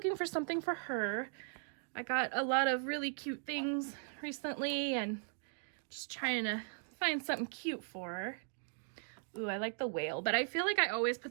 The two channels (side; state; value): left; silent; 52 dB below the other